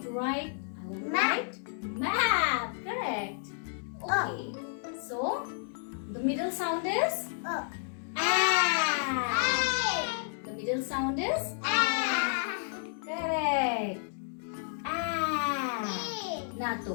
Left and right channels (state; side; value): silent; right; digital silence